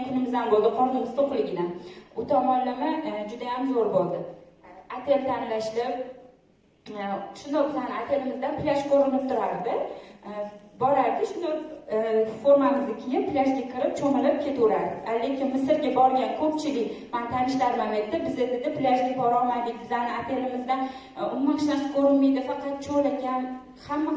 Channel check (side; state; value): both; identical; correlation 1.00